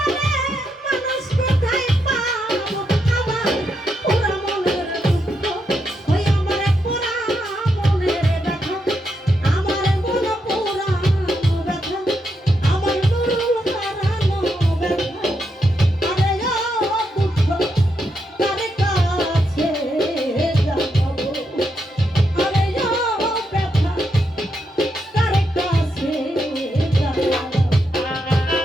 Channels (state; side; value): normal; both; correlation 0.82